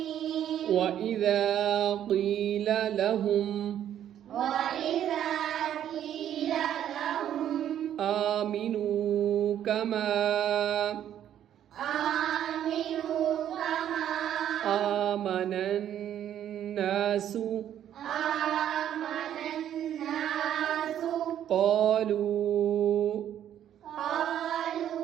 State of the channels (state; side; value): quieter; left; 10.6 dB